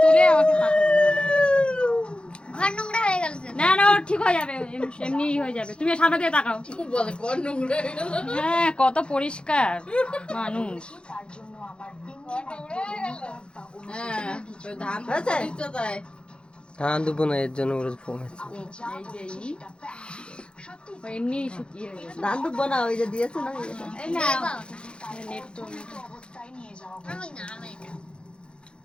না না ঠিক হয়ে যাবে এমনি হয়ে যাবে তুমি সামনে দিয়ে তাকাও হ্যাঁ কত পরিষ্কার মানুষ ধান দেবো না এর জন্য এমনি শুকিয়ে ধান দেবো না ওই যে দিয়েছে না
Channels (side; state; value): right; late; 0.054 ms